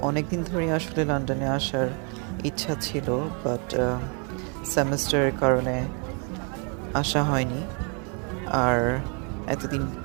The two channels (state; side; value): quieter; left; 37.3 dB